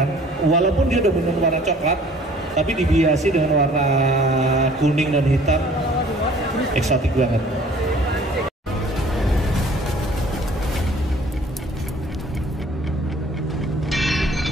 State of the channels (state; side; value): normal; both; correlation 0.53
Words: Walaupun dia udah benar warna coklat, tapi dihiasi dengan warna kuning dan hitam, eksotik banget.